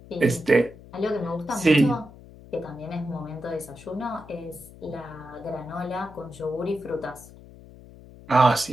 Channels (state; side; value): noise; left; hum, 19 dB below the sound